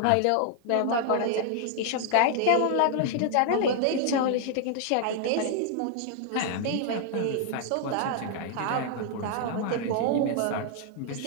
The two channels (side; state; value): both; different; correlation 0.00